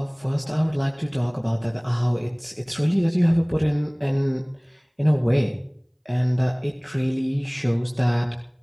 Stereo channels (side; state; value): both; identical; correlation 1.00